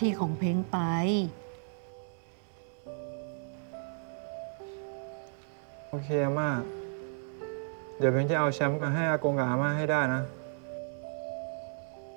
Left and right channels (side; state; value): left; silent; digital silence